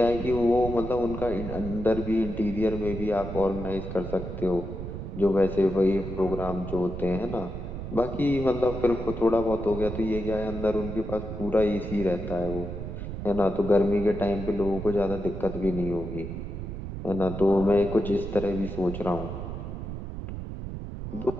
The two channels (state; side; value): noise; right; rumble, 7 dB below the sound